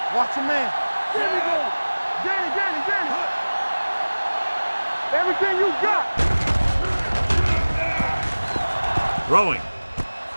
Watch your man. There we go. Danny. Everything you got. Throwing.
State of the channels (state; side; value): inverted; both; correlation -1.00